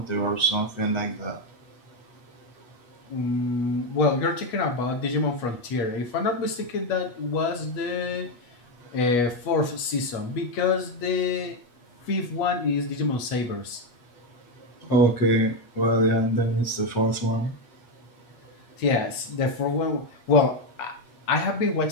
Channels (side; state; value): right; late; 8.3 ms